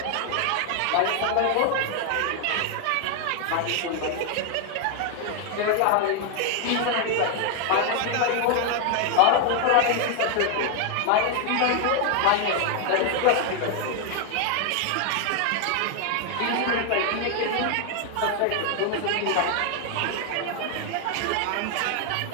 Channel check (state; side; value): different; both; correlation 0.00